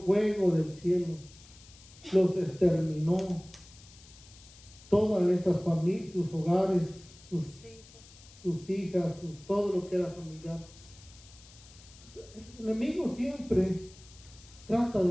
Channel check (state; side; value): noise; left; hiss, 22 dB below the sound